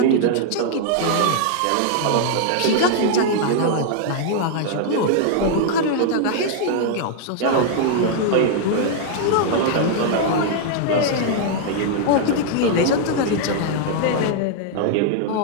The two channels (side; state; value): both; different; correlation 0.00